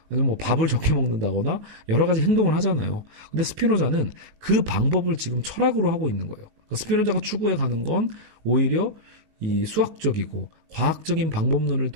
아니면 뭐 밥을 적게 먹는다거나 여러 가지 행동을 하잖아요. 근데 스피노자는 그 방법을 지금 철학으로 하고 있는 거예요. 그러니까 스피노자가 추구해 가는 건 오히려 이 수학적이고 과학적인 방법론을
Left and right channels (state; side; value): late; left; 19 ms